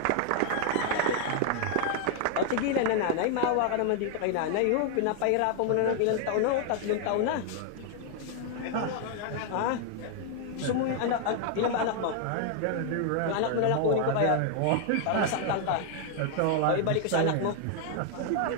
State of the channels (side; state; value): both; different; correlation 0.00